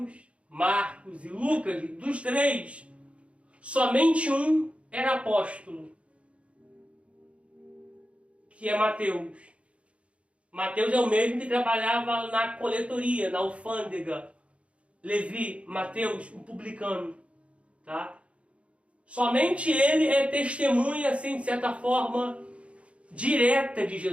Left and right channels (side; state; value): left; late; 0.061 ms